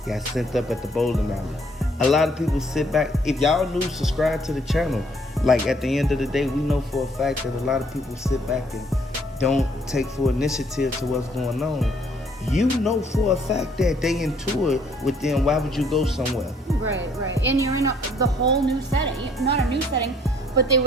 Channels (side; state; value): both; normal; correlation 0.63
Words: got sent up at the bowling alley. A lot of people sit back. If y'all new, subscribe to the channel. Like at the end of the day, we know for a fact that a lot of people sit back and don't take full initiative to what's going on. You know for a fact that they into it with them. Why would you go somewhere? Right, right. And you're in the whole new setting. Not a new setting, but they